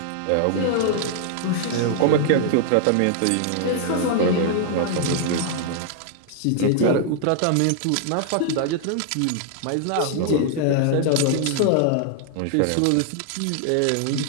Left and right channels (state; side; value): different; both; correlation 0.00